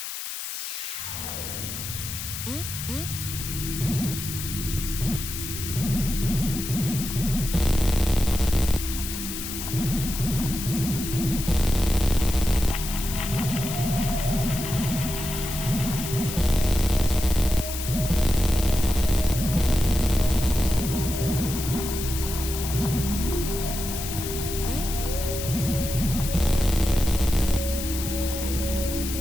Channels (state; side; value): noise; left; hiss, 7 dB below the sound